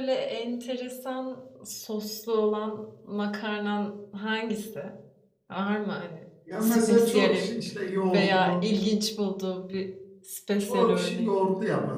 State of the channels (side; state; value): both; identical; correlation 1.00